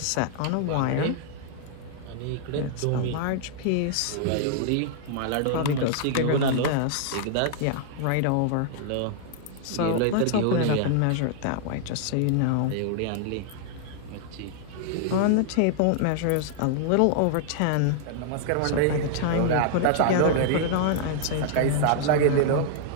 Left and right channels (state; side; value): different; both; correlation -0.01